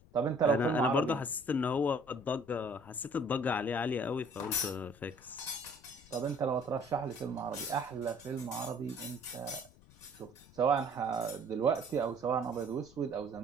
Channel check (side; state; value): left; noise; rumble, 24 dB below the sound